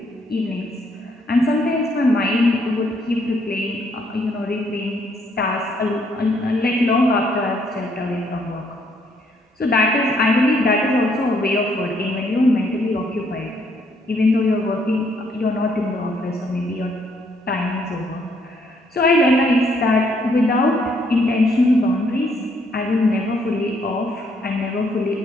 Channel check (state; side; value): normal; both; correlation 0.70